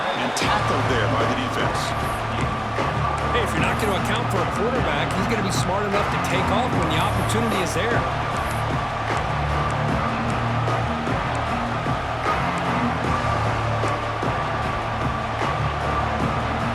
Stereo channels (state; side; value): identical; both; correlation 1.00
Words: And tackled there by the defense. Hey, if you're not going to account for a quarterback, he's going to be smart enough to take off when the opportunity is there.